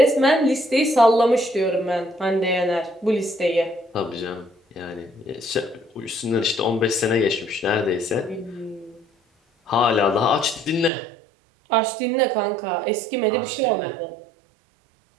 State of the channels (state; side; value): drops out; left; at 10.9 s